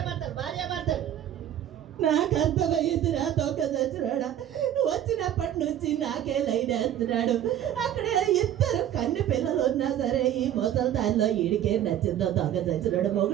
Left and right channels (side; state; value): left; quieter; 11.1 dB